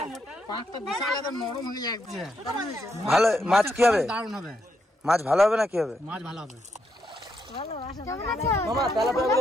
ভালো মাছ কি হবে মাছ ভালো হবে না কি হবে মাছ ভালো হবে মামা তেলাপিয়া গুলো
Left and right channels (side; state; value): both; normal; correlation 0.79